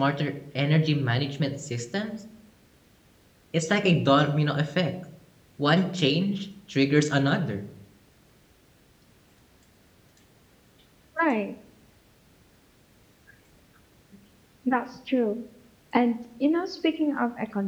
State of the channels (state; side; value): identical; both; correlation 1.00